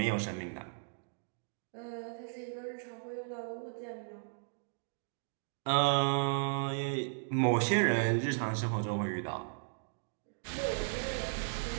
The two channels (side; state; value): left; silent; digital silence